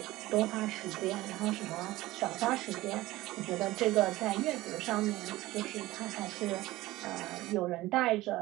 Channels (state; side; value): quieter; left; 17.9 dB